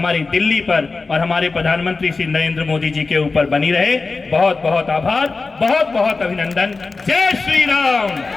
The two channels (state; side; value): quieter; right; 4.0 dB